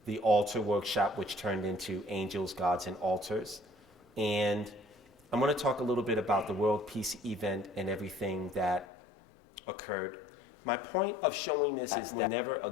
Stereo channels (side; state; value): right; drops out; at 8.8 s